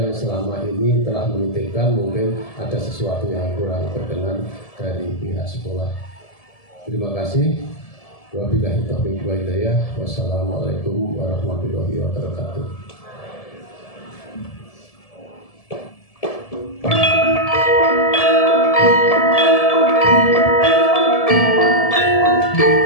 selama ini telah menitipkan mungkin ada sesuatu yang kurang berkenan dari pihak sekolah. Terima kasih. Wabillahi taufiq wal hidayah. Wassalamualaikum warahmatullahi wabarakatuh.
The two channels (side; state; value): right; late; 1.7 ms